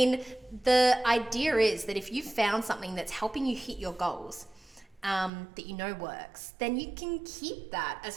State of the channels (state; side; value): drops out; left; at 5.3 s